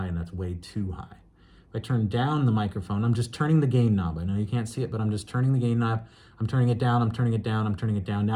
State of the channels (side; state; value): both; identical; correlation 1.00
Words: and that's way too high. If I turn down the microphone, I'm just turning the gain knob. I know you can't see it, but I'm just turning the gain knob. I'm turning it down, I'm turning it down, I'm turning it down.